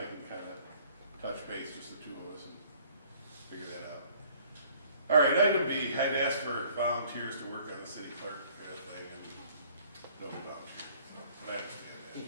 can kind of touch base, just the two of us, and figure that out. All right, item B, I'd ask for volunteers to work on the city clerk thing, and no volunteers. But I understand that,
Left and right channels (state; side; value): inverted; both; correlation -0.57